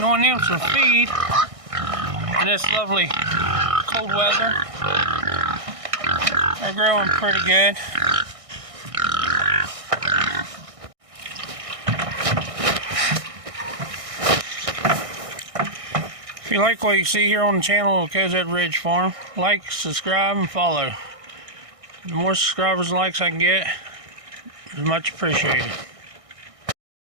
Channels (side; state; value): left; late; 1.6 ms